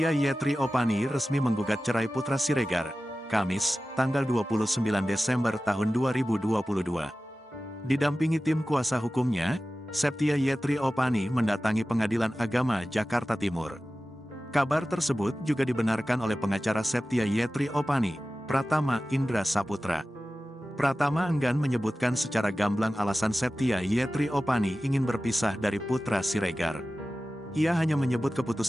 Yetri Opani resmi menggugat cerai Putra Siregar, Kamis, tanggal 29 Desember tahun 2022. Didampingi tim kuasa hukumnya, Septia Yetri Opani mendatangi Pengadilan Agama Jakarta Timur. Kabar tersebut juga dibenarkan oleh pengacara Septia Yetri Opani, Pratama Indra Saputra. Pratama enggan menyebutkan secara gamblang alasan Septia Yetri Opani ingin berpisah dari Putra Siregar. Ia hanya menyebut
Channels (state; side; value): normal; both; correlation 0.95